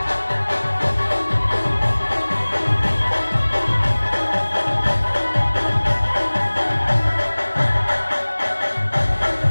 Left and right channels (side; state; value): both; inverted; correlation -1.00